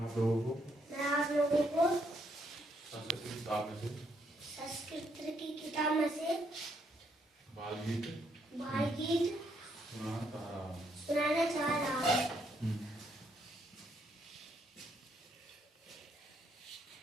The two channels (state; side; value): normal; both; correlation 0.74